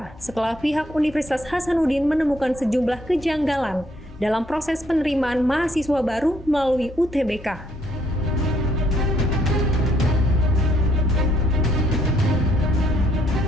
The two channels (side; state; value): both; normal; correlation 0.69